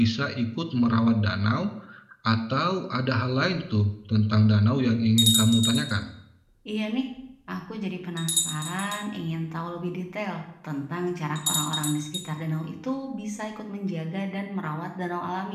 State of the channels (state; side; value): identical; both; correlation 1.00